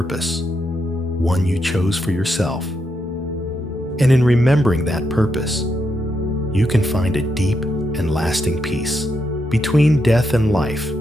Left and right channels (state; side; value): normal; both; correlation 0.81